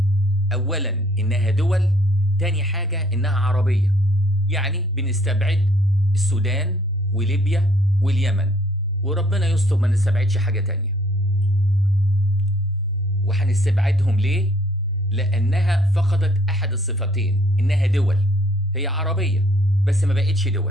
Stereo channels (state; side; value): normal; both; correlation 0.62